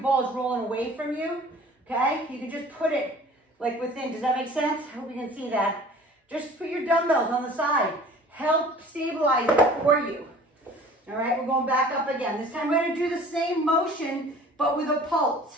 is rolling away from you, okay, you can just put it like within. Does that make sense? I hope you can see that. Just put your dumbbells on the side. Help stabilize it for you. All right, we're going back up again. This time we're gonna do the same motion, but with a pulse.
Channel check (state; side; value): normal; both; correlation 0.47